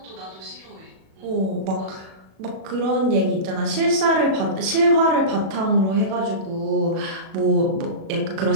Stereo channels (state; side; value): late; left; 37 ms